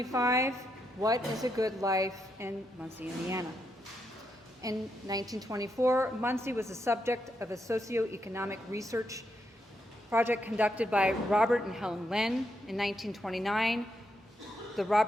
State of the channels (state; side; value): normal; both; correlation 0.81